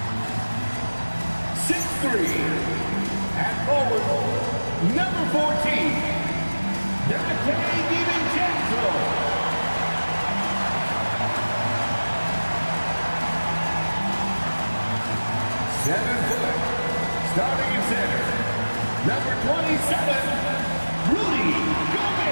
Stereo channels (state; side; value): inverted; both; correlation -1.00